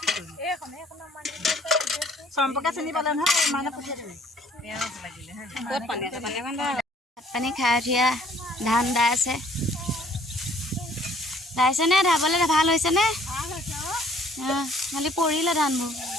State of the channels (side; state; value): both; normal; correlation 0.59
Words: সম্পৰ্কে চিনি পালে নহয় মানে পঠিয়াই দিবি ক'ত পানী আছে পানী ভাত পানী খাই উঠিয়া ধান দাই আছে দাইছেনে ধাবলৈ ভাল হৈছেনে খালি পৰিলে ধানবোৰ